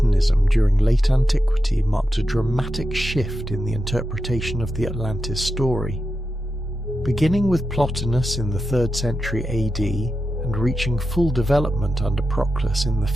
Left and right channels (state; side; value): normal; both; correlation 0.89